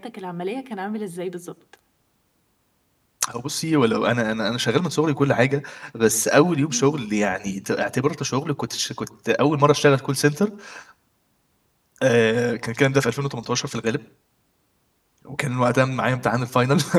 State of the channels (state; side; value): identical; both; correlation 1.00